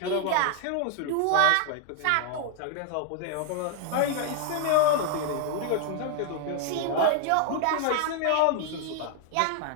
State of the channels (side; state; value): both; different; correlation 0.00